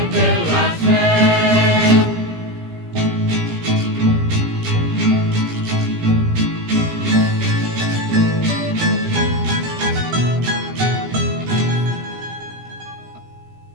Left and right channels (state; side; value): late; left; 17 ms